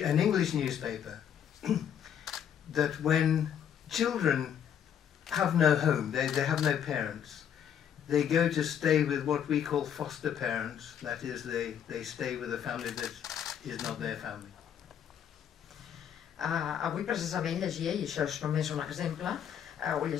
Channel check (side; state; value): right; quieter; 8.9 dB